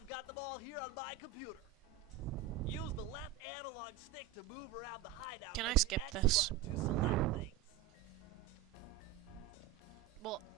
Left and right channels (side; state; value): left; quieter; 10.4 dB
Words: got them all here on my computer. Use the left analog stick to move around the hideout Can I and the skip X this? button to select things. Well,